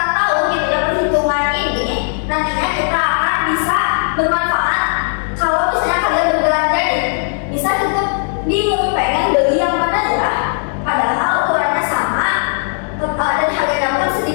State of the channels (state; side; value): silent; right; 69 dB below the other